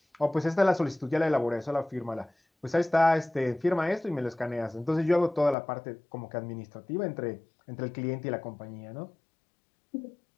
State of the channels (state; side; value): drops out; right; at 5.6 s